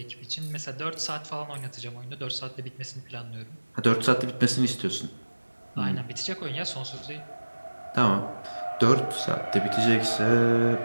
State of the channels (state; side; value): inverted; both; correlation -1.00